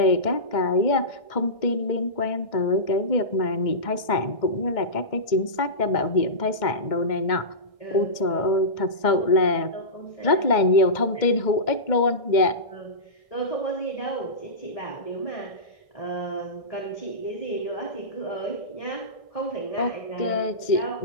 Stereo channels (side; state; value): right; late; 1.6 ms